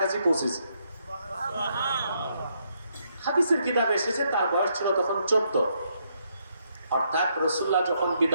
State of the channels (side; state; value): both; inverted; correlation -0.75